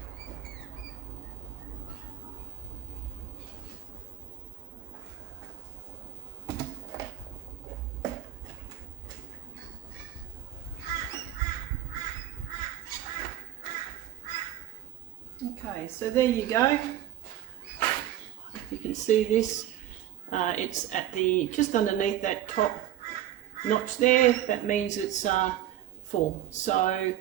Okay, so there you go. If you can see this, it's at the just underneath that top notch there. That means it's full. So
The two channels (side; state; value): left; quieter; 12.6 dB